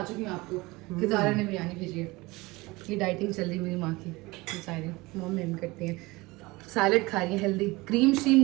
चुकी हूँ आपको कि ज़ारा ने बिरयानी भेजी है। ये डाइटिंग चल रही है मेरी माँ की, बेचारी मॉम मेम करती हैं। सैलेड खा रही है, हेल्दी, क्रीम श्रीम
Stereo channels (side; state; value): left; quieter; 22.3 dB